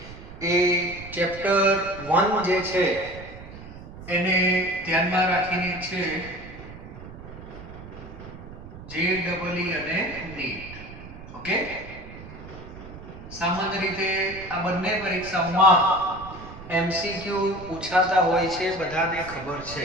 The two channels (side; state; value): right; noise; rumble, 15 dB below the sound